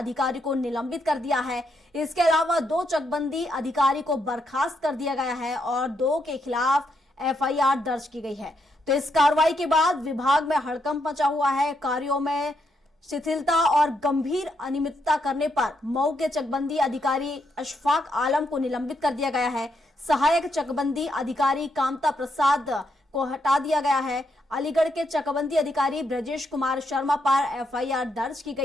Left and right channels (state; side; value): normal; both; correlation 0.78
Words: को निलंबित कर दिया है। इसके अलावा 2 चकबंदी अधिकारी को बर्खास्त कर दिया गया है और 2 के खिलाफ एफआईआर दर्ज की गई है। तो इस कार्रवाई के बाद विभाग में हड़कंप मचा हुआ है। कार्यों में शिथिलता और गंभीर अनियमितता करने पर मऊ के चकबंदी अधिकारी अशफाक आलम को निलंबित कर दिया गया है। सहायक चकबंदी अधिकारी कामता प्रसाद को हटा दिया गया है। अलीगढ़ के चकबंदी अधिकारी ब्रजेश कुमार शर्मा पर एफआईआर दर्ज की